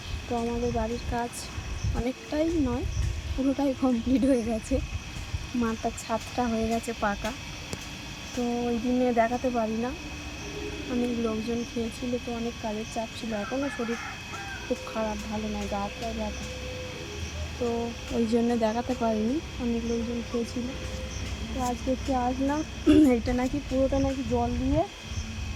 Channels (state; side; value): identical; both; correlation 1.00